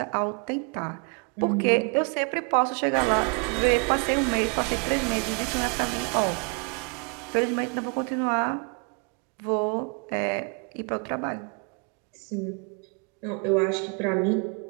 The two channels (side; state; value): left; quieter; 36.5 dB